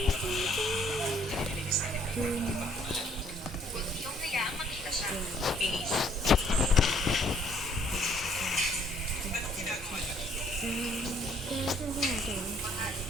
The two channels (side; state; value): both; normal; correlation 0.62